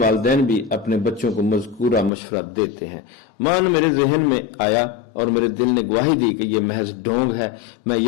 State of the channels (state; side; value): drops out; right; at 2.1 s